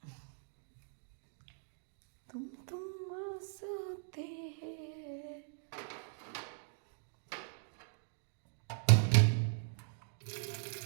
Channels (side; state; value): left; silent; digital silence